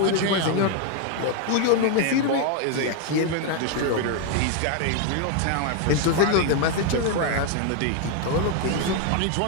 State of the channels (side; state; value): both; different; correlation 0.01